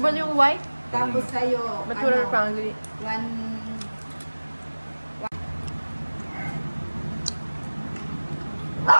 ba yung white? Tapos sa'yo, Mature family.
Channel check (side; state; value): both; inverted; correlation -1.00